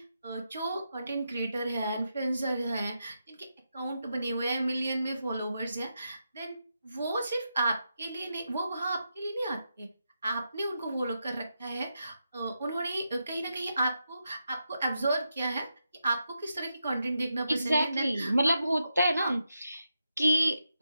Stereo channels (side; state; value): both; inverted; correlation -0.86